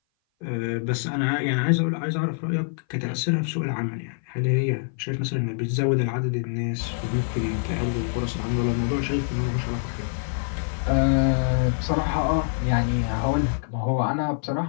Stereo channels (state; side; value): silent; right; 57 dB below the other